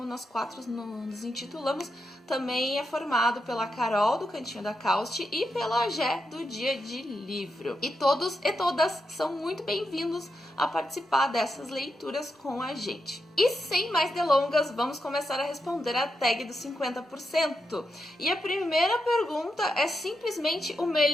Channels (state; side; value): normal; both; correlation 0.85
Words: nós 4 nos intitulamos, também é formado pela Carol, do Cantinho da Causte, e pela Gé, do Dia de Livro. E todos e todas são muito bem-vindos a participar dessas leituras com a gente. E sem mais delongas, vamos começar a responder a tag dos 50%. E a primeira pergunta é simplesmente o